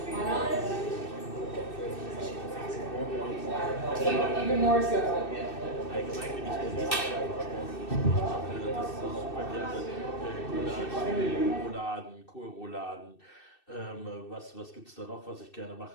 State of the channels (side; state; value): right; late; 2.6 ms